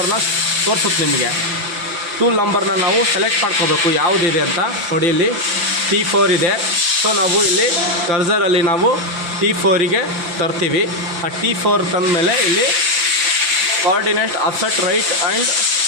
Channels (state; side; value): late; left; 5.9 ms